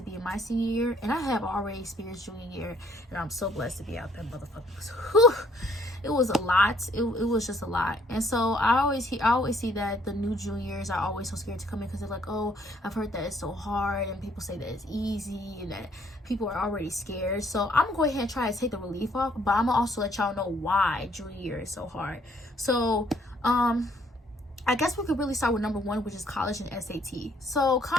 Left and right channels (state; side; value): normal; both; correlation 0.65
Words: be in my senior year and I have already experienced junior year, and I'm so blessed to be out there, motherfuckers. Whew. It was a lot. It was just a lot. And so I always see that the new juniors are always so scared to come in because they're like, oh, I've heard that it's so hard, and people say that it's easy and that people are already scared. So I'm gonna go ahead and try to take the relief off, but I'm gonna also let y'all know why junior year is so hard. So I guess we could really start with number one, which is college and SAT. So